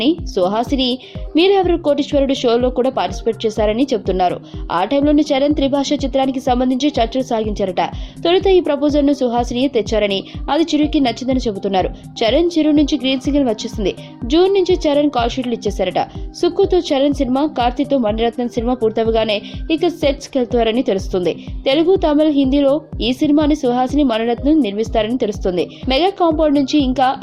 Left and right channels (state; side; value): identical; both; correlation 1.00